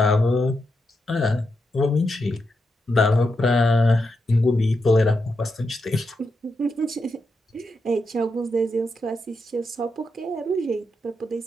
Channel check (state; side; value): normal; both; correlation 0.85